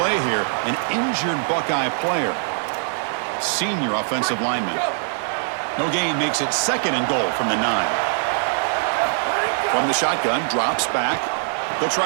here, an injured Buckeye player. Senior offensive lineman. No gain makes it second and goal from the 9. From the shotgun, drops back. They'll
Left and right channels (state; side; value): silent; left; digital silence